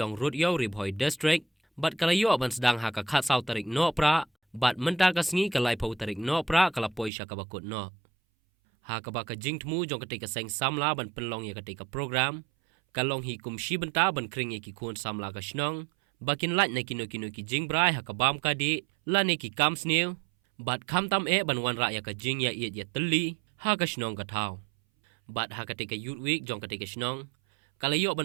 rut yo ribhoi district, bat kala yo ban sedang haka khat sau tarik no pra, bat menta kasngi kalai pau tarik no pra kala poi sha kabakut no. Ha kabaka jing tmu jong ketika seng samla ban penlong ya ketika program, kalong hi kum shi benta ban kring ya ki kun samla ka shnong, bakin lat na kino ki jing brai ha kabam ka di, la ne ki kam snew, bat kam tam ban wan ra ya ka jing ya iet ya teli, ha ka shnong ka thau. Bat ha ketika youth week jong ketika shnong, kalayo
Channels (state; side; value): drops out; left; at 7.1 s